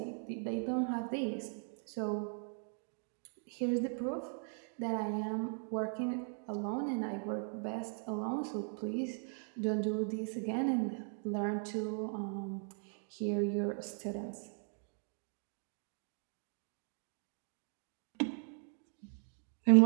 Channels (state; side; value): silent; left; 52 dB below the other